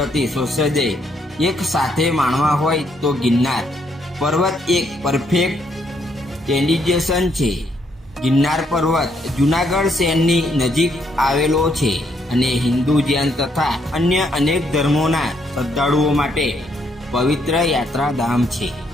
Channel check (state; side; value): normal; both; correlation 0.73